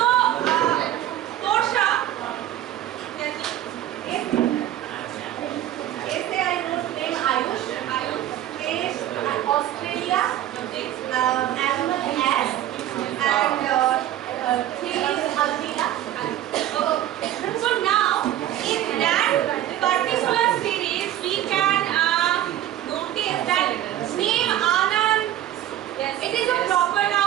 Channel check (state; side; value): quieter; left; 12.6 dB